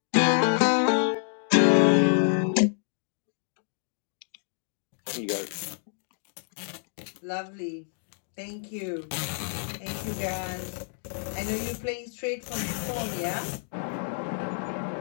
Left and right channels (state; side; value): silent; right; digital silence